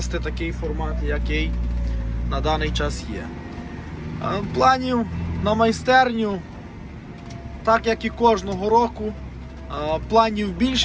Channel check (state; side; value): identical; both; correlation 1.00